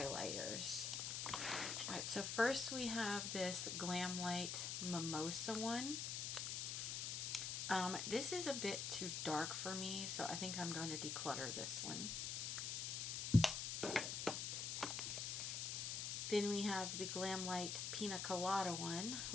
Alright, so first we have this Glam Light Mimosa one. This is a bit too dark for me, so I think I'm going to declutter this one. Then we have the Glam Light Pina Colada one,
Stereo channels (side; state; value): left; noise; hiss, 2 dB below the sound